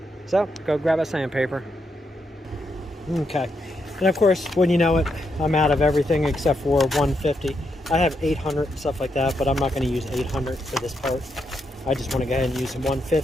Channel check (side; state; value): both; normal; correlation 0.81